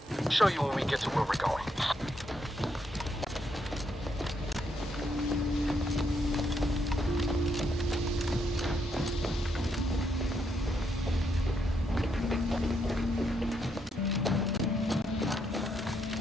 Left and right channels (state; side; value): normal; both; correlation 0.77